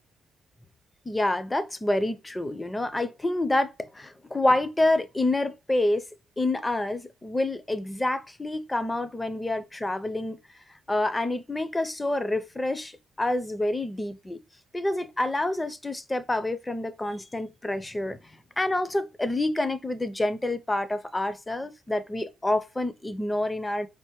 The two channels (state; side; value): normal; both; correlation 0.94